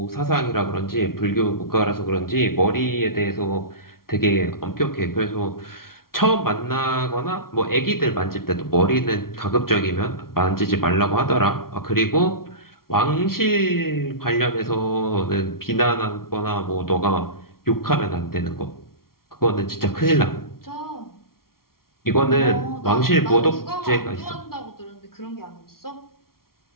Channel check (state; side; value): late; right; 0.93 ms